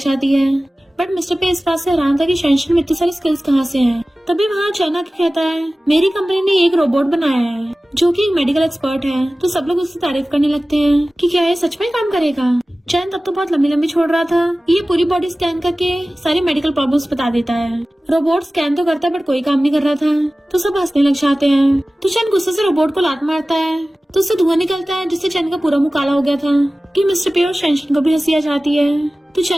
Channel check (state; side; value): normal; both; correlation 0.97